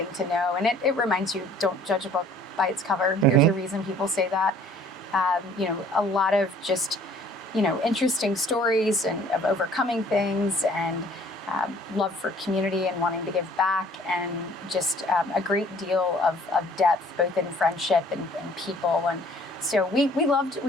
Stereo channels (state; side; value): normal; both; correlation 0.55